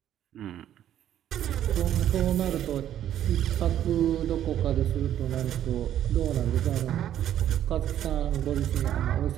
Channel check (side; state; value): left; quieter; 11.1 dB